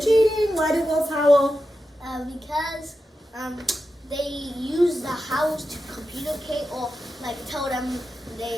cheating. Why do wolves howl? Because they use the howls to communicate or like tell them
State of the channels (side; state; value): both; normal; correlation 0.90